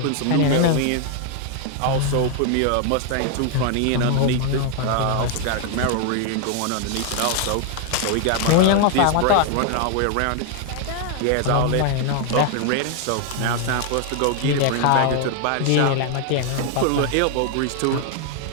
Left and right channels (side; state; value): both; different; correlation 0.00